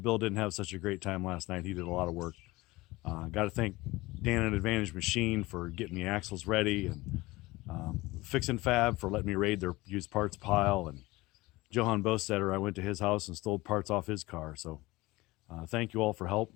didn't have such a great time last night. He did a lot of work. Got to thank Dan at Advantage Machine for getting the axles ready, and Fixin' Fab for letting me raid their used parts pile, and Johann Bostater, I went to his house and stole parts off his car. So thank you all for help.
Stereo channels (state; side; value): quieter; right; 20.6 dB